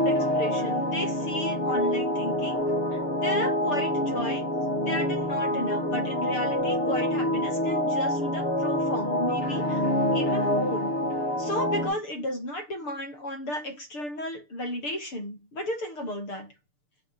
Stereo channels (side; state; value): right; late; 6.8 ms